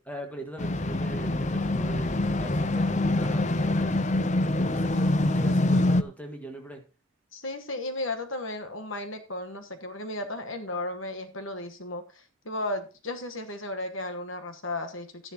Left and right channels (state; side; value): normal; both; correlation 0.60